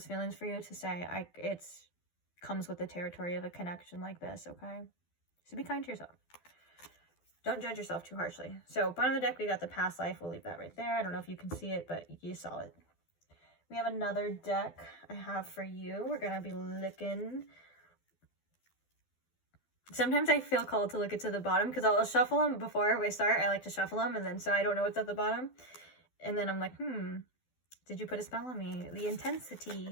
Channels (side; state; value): right; late; 12 ms